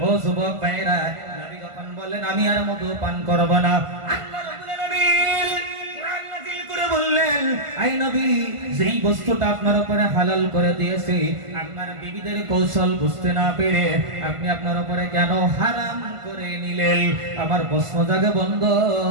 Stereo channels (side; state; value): left; late; 1.5 ms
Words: ও যুবক ভাইরা, নবী যখন বললেন আমি আর মধু পান করব না, আল্লাহ রাব্বুল আলামিন কোরআন নাযিল করে বললেন আই নবী যেই বস্তুটা আপনার উপরে হালাল করে দিয়েছি আপনার বিবিদের কৌশল বুঝতে না পেরে আপনি আপনার উপরে কেন হারাম করে নিলেন? আমার প্রশ্ন জাগে বন্ধ।